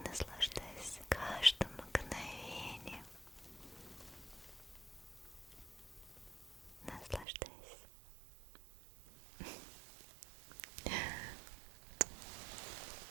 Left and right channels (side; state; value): left; drops out; at 7.2 s